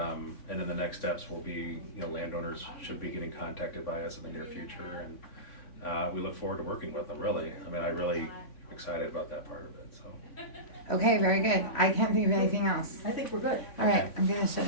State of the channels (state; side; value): late; right; 3.5 ms